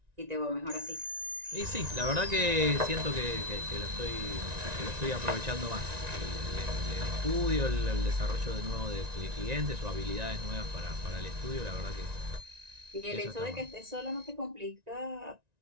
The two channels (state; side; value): late; left; 1.9 ms